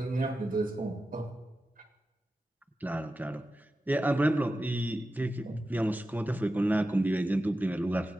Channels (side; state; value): both; normal; correlation 0.92